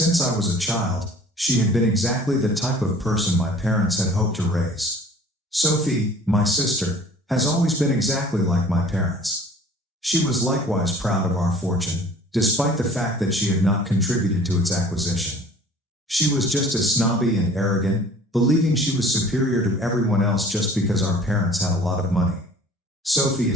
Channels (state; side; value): normal; both; correlation 0.49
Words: I was a child, she had been exactly the type of person my parents had hoped to raise. Sophie, my sister, has always been exactly like my parents. She was likewise proud of our fortune, despite the fact that she had not contributed to its acquisition. She was just as snobby and arrogant, believing she was superior to everyone else just because our parents had a lot of money. Sophie